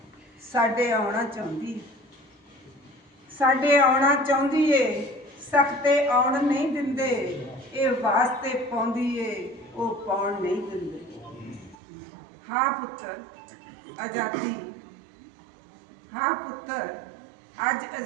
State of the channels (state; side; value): drops out; left; at 11.8 s